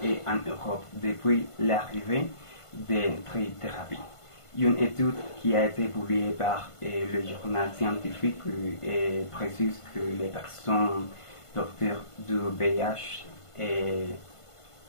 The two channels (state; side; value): late; right; 1.5 ms